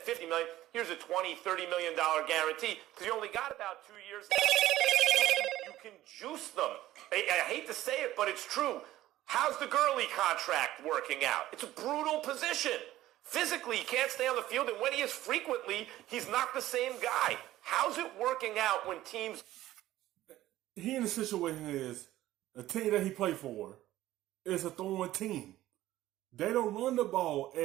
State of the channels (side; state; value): left; quieter; 14.8 dB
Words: million. Here's a $20, $30 million guarantee because you only got about 2 years. You can juice them. I hate to say it, but it's true. How's the Gurley contract working out? It's a brutal position. Physically, he can't stay on the field, and when he is frequently, he's not the same guy. How's it working out when teams... He in the situation is, the team that he played for is a throwing team. They don't run the ball